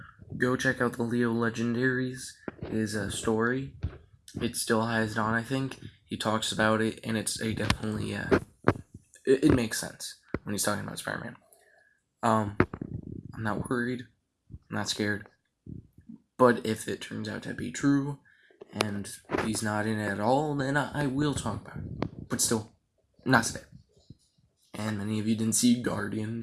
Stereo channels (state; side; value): identical; both; correlation 1.00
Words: go check out the Leo Legendaries, his story. It still has it on, I think. He talks about it, and it's a definitely, it makes sense when he's talking about Spider-Man. I'm not worried. I'm not scared. But if it turns out to be true, and he's not in it at all, then I will talk about it. But still, not today. And many of you didn't see